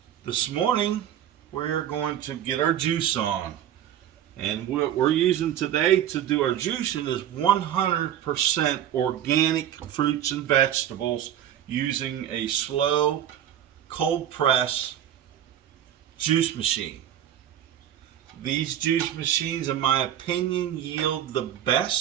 This morning, we're going to get our juice on. And what we're using today to do our juicing is 100% organic fruits and vegetables using a slow, cold press juice machine. These juice machines, in my opinion, yield the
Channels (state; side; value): quieter; left; 10.8 dB